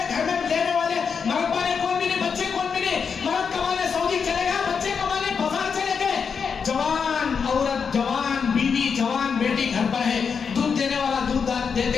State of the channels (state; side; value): quieter; right; 6.1 dB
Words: گھر میں لینے والے مرد بانے کون بھی نہیں، بچے کون بھی نہیں، مرد کمانے سعودی چلے گا، بچے کمانے بازار چلے گئے، جوان عورت، جوان بیوی، جوان بیٹی گھر پر ہے، دودھ دینے والا دودھ